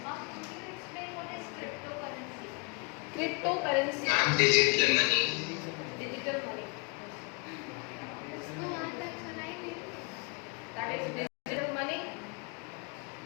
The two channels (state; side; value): quieter; right; 32.5 dB